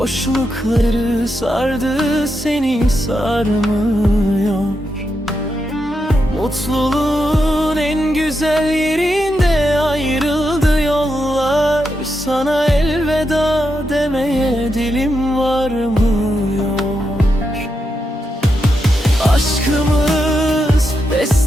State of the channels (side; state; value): both; normal; correlation 0.85